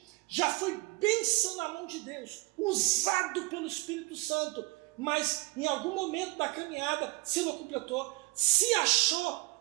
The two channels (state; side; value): quieter; left; 23.0 dB